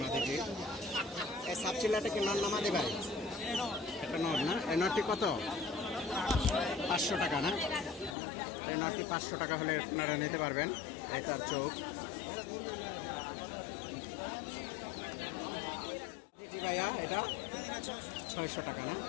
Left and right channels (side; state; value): right; drops out; at 8.2 s